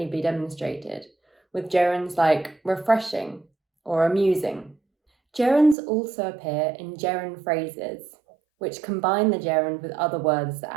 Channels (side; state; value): left; drops out; at 5.8 s